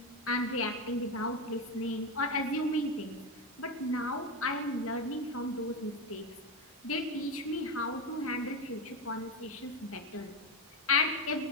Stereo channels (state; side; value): normal; both; correlation 0.14